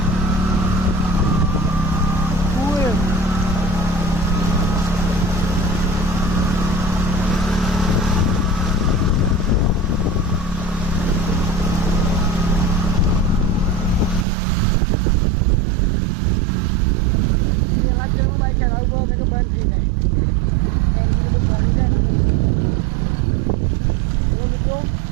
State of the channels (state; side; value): drops out; left; at 14.2 s